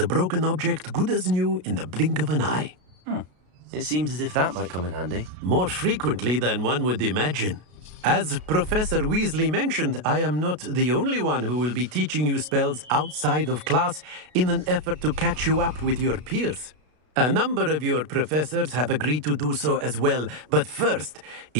broken object good as new in the blink of an eye. It seems as if that might come in handy. More frequently than one would imagine. As Professor Weasley mentioned, I am not the only one who will be teaching you spells outside of class in an effort to catch you up with your peers. A number of your professors have agreed to do so as well, but first,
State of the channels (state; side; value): late; left; 33 ms